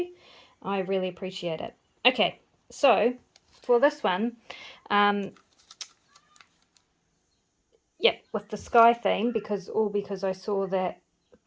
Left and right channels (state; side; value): identical; both; correlation 1.00